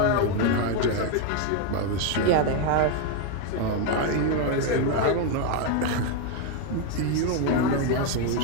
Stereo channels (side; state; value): both; different; correlation 0.01